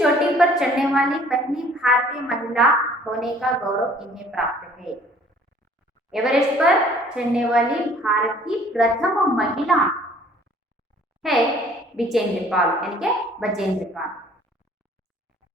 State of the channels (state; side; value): normal; both; correlation 0.55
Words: पर चढ़ने वाली पहली भारतीय महिला होने का गौरव इन्हें प्राप्त है। एवरेस्ट पर चढ़ने वाली भारत की प्रथम महिला है विजेंद्र पाल यानी कि बचेंद्र पाल।